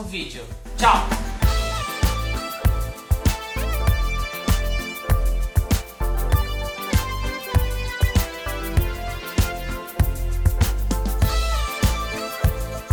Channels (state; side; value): identical; both; correlation 1.00